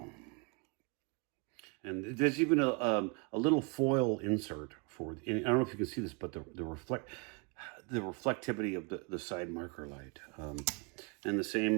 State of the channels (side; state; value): left; quieter; 32.0 dB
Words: And there's even a little foil insert for, I don't know if you can see this, but the reflectivity of the side marker light. And the